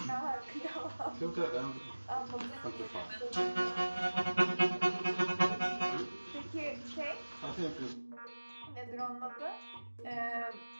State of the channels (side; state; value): both; inverted; correlation -1.00